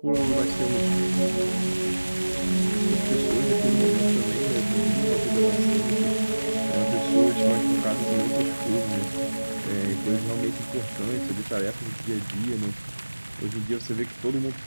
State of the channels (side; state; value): both; inverted; correlation -1.00